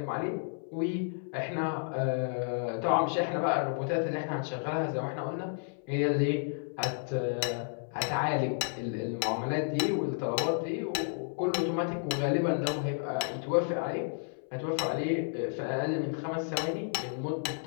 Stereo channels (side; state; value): right; silent; 57 dB below the other